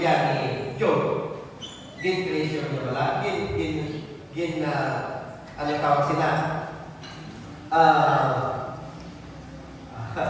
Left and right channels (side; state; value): both; identical; correlation 1.00